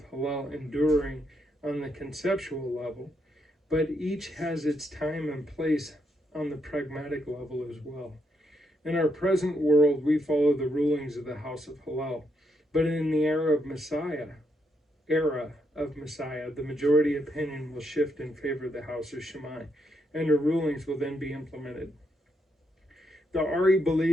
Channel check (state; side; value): normal; both; correlation 0.78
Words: Hillel enduring on the conceptual level, but each has its time and place on the pragmatic level as well. In our present world, we follow the rulings of the house of Hillel, but in the era of Messiah, the majority opinion will shift in favor of the house of Shammai, and the rulings will then be implemented. The Ari